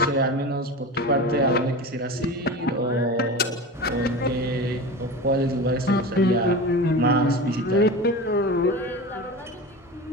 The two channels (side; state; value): both; normal; correlation 0.29